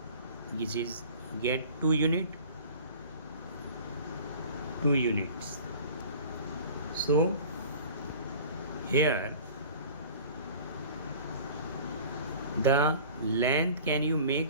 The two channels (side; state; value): both; inverted; correlation -0.43